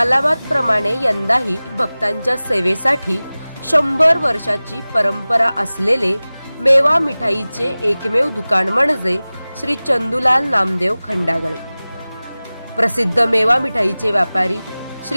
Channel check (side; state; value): both; inverted; correlation -0.98